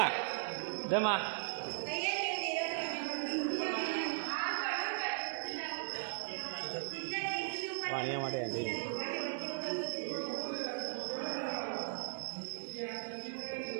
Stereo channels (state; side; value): silent; left; digital silence